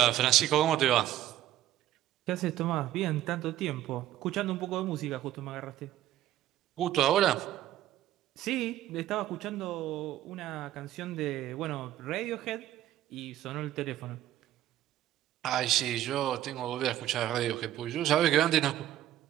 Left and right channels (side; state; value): left; quieter; 13.2 dB